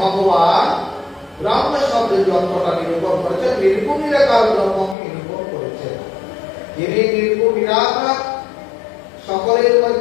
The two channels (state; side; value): drops out; right; at 5.0 s